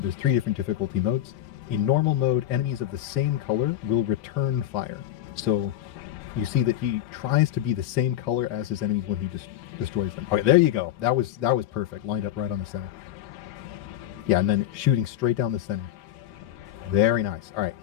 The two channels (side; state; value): right; quieter; 12.3 dB